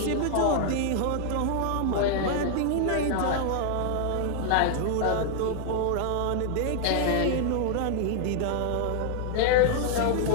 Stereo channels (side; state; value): both; different; correlation 0.00